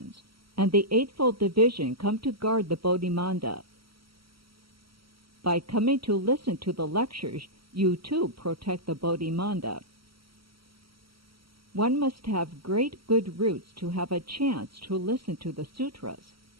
and the Eightfold Division come to guard the Bodhimanda. By coming to listen to the lectures, you too protect the Bodhimanda. One must have great good roots to have a chance to listen to the sutras.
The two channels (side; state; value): left; late; 0.75 ms